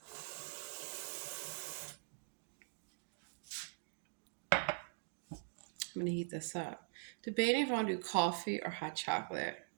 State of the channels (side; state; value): left; silent; digital silence